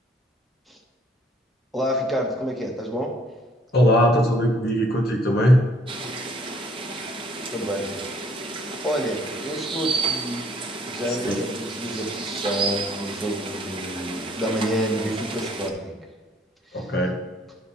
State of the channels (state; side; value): normal; both; correlation 0.62